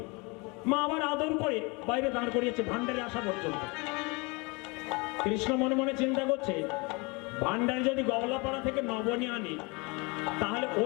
মা আবার আদর করে বাইরে দাঁড় করিয়েছে ভান্ডারে আসা পর্যন্ত। কৃষ্ণ মনে মনে চিন্তা করছে, ভান্ডারে যদি গওলাপাড়া থেকে নবনী আনি তাহলে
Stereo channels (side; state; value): right; quieter; 28.3 dB